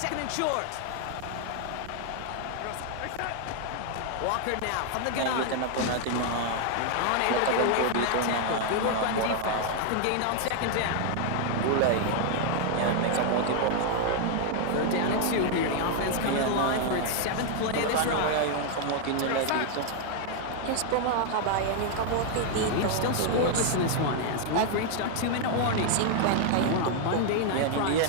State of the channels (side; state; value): both; different; correlation 0.00